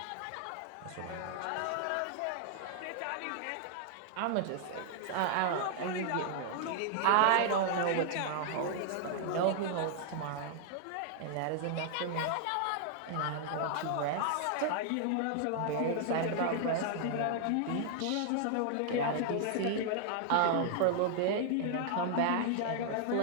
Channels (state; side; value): different; both; correlation -0.01